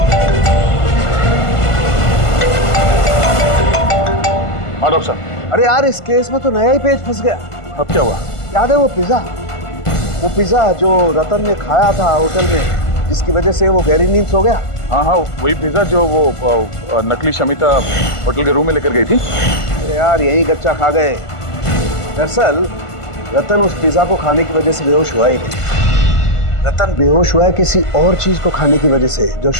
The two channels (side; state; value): right; late; 1.5 ms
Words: हाँ डॉक्टर साहब। अरे यार, इस केस में तो नया ही पेज फंस गया। अब क्या हुआ? याद है वो पिज्जा जो रतन ने खाया था होटल में, जिसकी वजह से वो गहरी नींद सो गया। हाँ, वही पिज्जा जो वो नकली शमिता होटल के रूम में लेकर गई थी। यार यही कच्चा खा गए। दरअसल रतन उस पिज्जा को खाने की वजह से बेहोश हुआ ही नहीं। रतन बेहोश हुआ है किसी और चीज को खाने की वजह से, जो